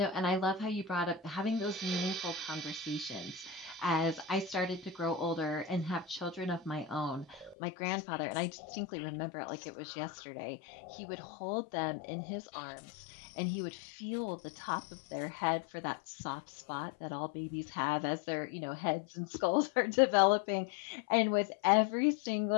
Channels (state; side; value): drops out; right; at 7.6 s